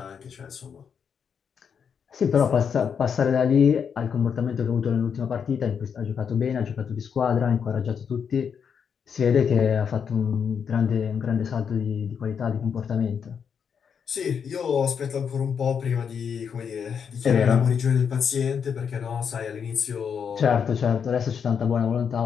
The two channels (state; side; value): quieter; right; 7.0 dB